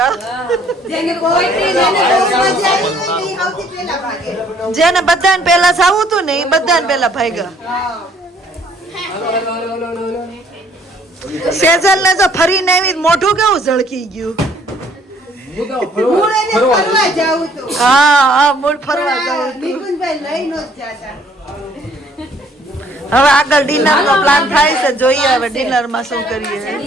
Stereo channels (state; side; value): normal; both; correlation 0.62